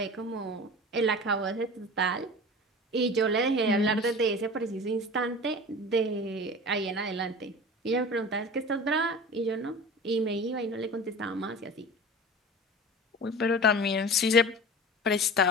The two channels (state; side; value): normal; both; correlation 0.36